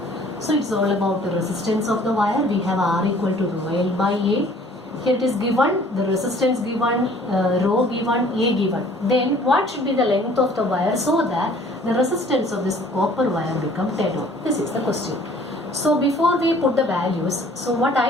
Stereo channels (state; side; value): normal; both; correlation 0.54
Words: So it's all about the resistance of the wire. We have R equal to rho L by A. Here it is given, the resistance given, rho given, A given. Then what should be the length of the wire so that the resistance of this copper wire become 10 ohm? This is the question. So before we put the values, so what